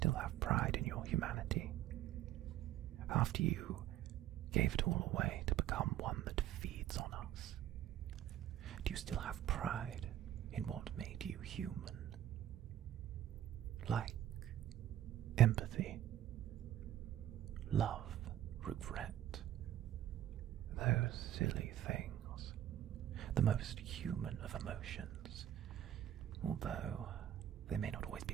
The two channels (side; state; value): left; quieter; 12.1 dB